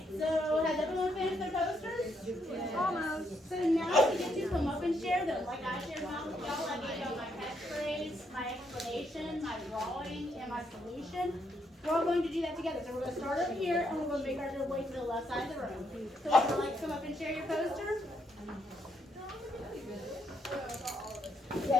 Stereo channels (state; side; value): normal; both; correlation 0.76